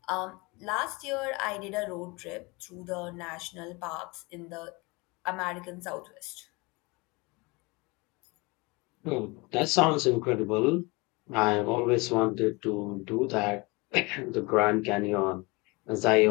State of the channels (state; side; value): quieter; right; 26.1 dB